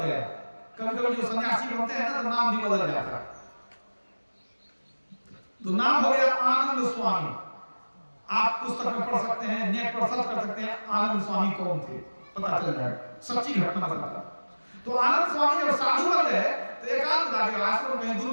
गया। कभी कभी जो सन्यासी बनते हैं ना तो नाम भी बदल जाता है, तो नाम हो गया आनंद स्वामी। आप पुस्तक में पढ़ सकते हैं, नेट पर सर्च कर सकते हैं आनंद स्वामी कौन थे, पता चल जाएगा, सच्ची घटना बताता। तो आनंद स्वामी जब साधु बन गए तो एकांत जाके आश्रम कहीं दूर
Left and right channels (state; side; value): inverted; both; correlation -1.00